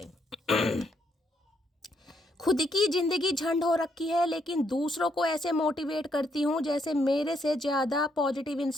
खुद की ज़िंदगी झंड हो रखी है, लेकिन दूसरों को ऐसे मोटिवेट करती हूँ जैसे मेरे से ज़्यादा पॉजिटिव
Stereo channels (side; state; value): both; normal; correlation 0.75